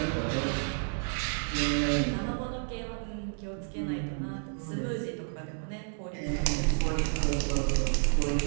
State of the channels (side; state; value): left; silent; 57 dB below the other